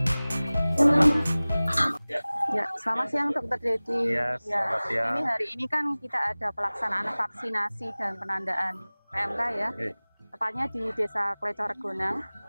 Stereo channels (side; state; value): both; inverted; correlation -0.99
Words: Ya, selamat siang Dokter Dedi. Iya, selamat siang. Ini hari ini kan kita ada pelaksanaan vaksinasi dan penandaan PMK ya. Tepatnya di Desa Klecoregonang.